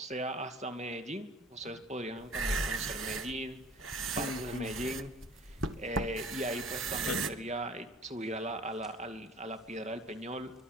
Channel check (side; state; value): both; normal; correlation 0.46